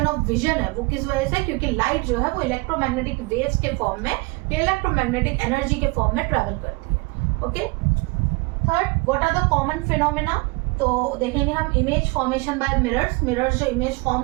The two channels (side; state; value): left; quieter; 25.9 dB